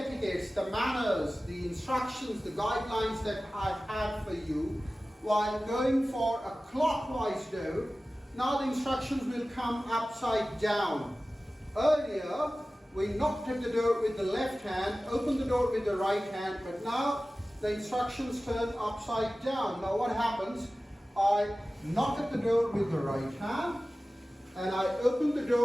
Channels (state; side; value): normal; both; correlation 0.96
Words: the manners, the instructions, the guidelines that I've had for you while going for a clockwise door, now the instructions will come upside down. Earlier, we knocked at the door with the left hand, opened the door with the right hand, but now the instructions turn upside down. Now what happens? I knock at the door with the right hand and I open the